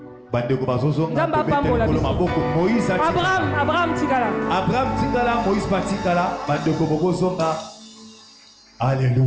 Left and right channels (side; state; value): both; identical; correlation 1.00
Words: Abraham tikala. Abraham tikala, Moïse patikala, bandeko bozonga.